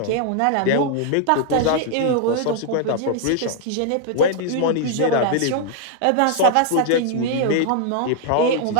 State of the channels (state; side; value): different; both; correlation 0.00